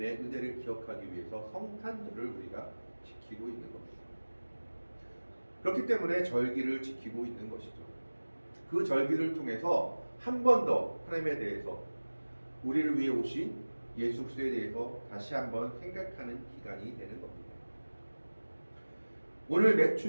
은혜를 기억하기 위해서 성탄절을 우리가 지키고 있는 겁니다. 그렇기 때문에 절기를 지키고 있는 것이죠. 그 절기를 통해서 한 번 더 하나님에 대해서 우리를 위해 오신 예수 그리스도에 대해서 다시 한번 생각하는 기간이 되는 겁니다. 오늘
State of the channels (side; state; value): both; inverted; correlation -1.00